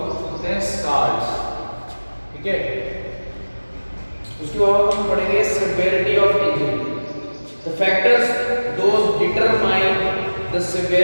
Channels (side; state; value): both; inverted; correlation -1.00